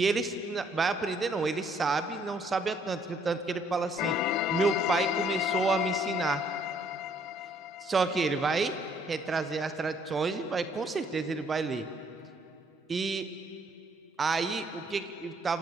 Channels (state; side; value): normal; both; correlation 0.65